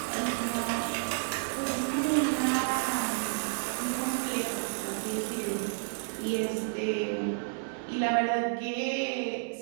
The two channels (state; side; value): silent; left; 57 dB below the other